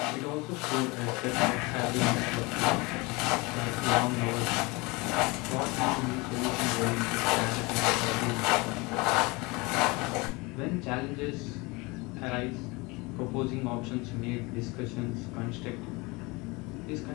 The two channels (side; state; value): right; quieter; 25.4 dB